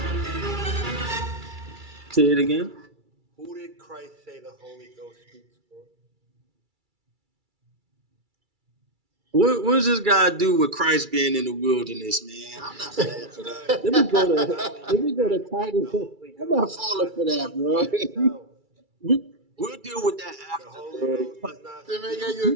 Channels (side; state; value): left; late; 2.3 ms